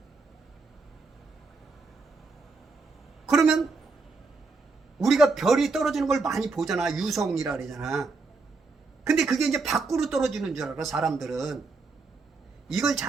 그러면 우리가 별이 떨어지는 걸 많이 보잖아. 유성이라 그러잖아. 근데 그게 이제 밖으로 떨어지는 줄 알아, 사람들은. 이걸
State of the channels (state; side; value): quieter; left; 4.0 dB